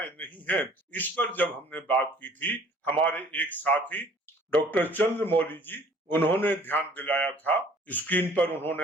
नहीं है, इस पर जब हमने बात की थी, हमारे एक साथी डॉक्टर चंद्रमौली जी, उन्होंने ध्यान दिलाया था, स्क्रीन पर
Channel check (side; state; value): both; normal; correlation 0.54